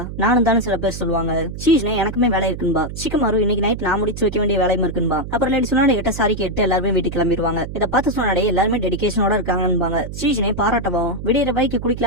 நானும் தானே சில பேர் சொல்லுவாங்க. சீஜனை எனக்குமே வேலை இருக்குன்பா. சிக்கமாரு இன்னைக்கு நைட் நான் முடிச்சு வைக்க வேண்டிய வேலையும் இருக்குன்பா. அப்புறம் லேடி சொன்னாடே கிட்ட சாரி கேட்டு எல்லாருமே வீட்டுக்கு கிளம்பிடுவாங்க. இதை பார்த்து சொன்னாடே எல்லாருமே டெடிகேஷனோட இருக்காங்கன்பாங்க. சீஜனை பாராட்டவும் விடியற பைக்கு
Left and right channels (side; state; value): right; noise; hum, 9 dB below the sound